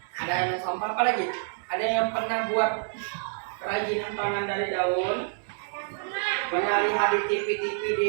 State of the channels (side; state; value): left; silent; digital silence